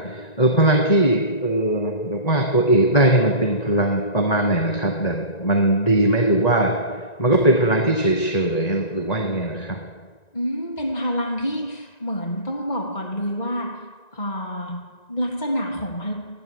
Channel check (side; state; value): right; late; 1.9 ms